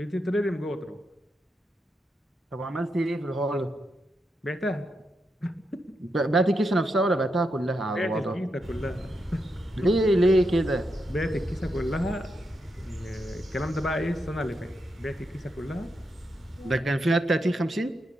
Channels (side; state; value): both; normal; correlation 0.84